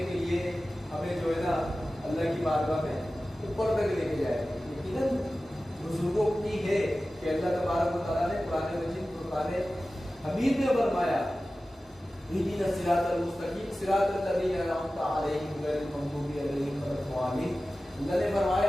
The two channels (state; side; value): normal; both; correlation 0.95